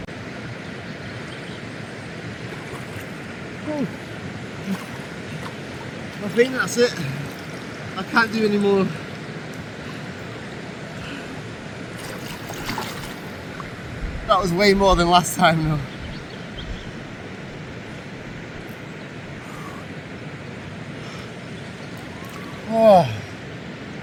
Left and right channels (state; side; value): identical; both; correlation 1.00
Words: Oh. I think that's it. I can't do any more. That was way more than last time though. Oh